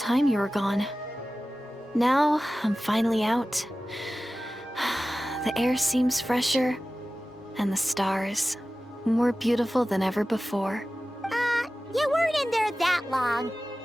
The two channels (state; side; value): normal; both; correlation 0.95